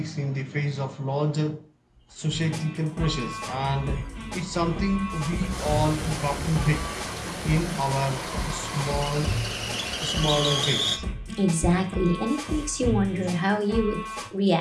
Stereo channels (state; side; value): identical; both; correlation 1.00